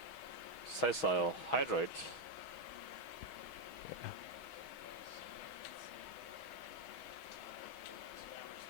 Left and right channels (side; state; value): right; late; 6.3 ms